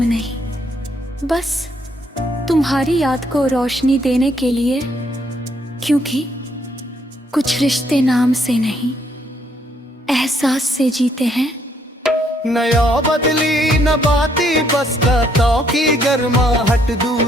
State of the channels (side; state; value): both; normal; correlation 0.70